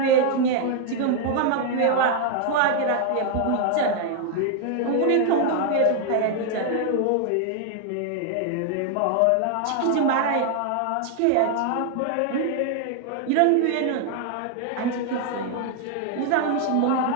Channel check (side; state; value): both; different; correlation 0.00